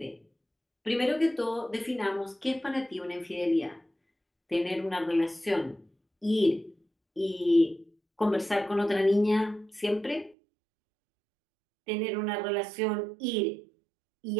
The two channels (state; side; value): drops out; left; at 10.4 s